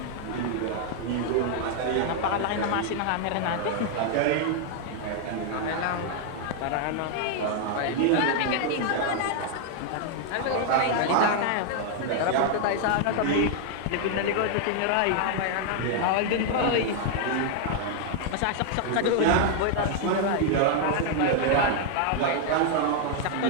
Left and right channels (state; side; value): different; both; correlation 0.00